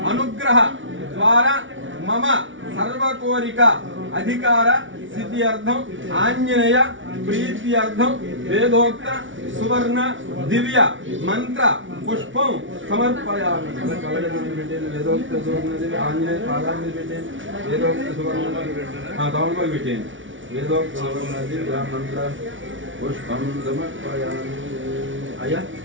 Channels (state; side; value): late; left; 0.56 ms